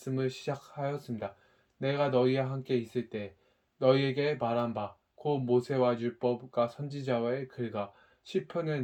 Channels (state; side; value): identical; both; correlation 1.00